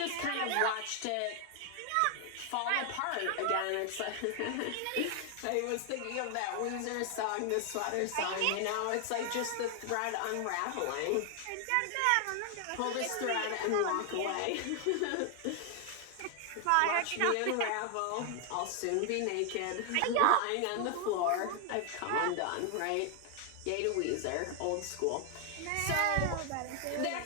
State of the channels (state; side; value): different; both; correlation 0.00